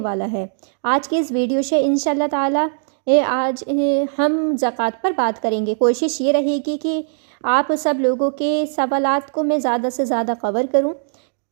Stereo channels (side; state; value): left; silent; digital silence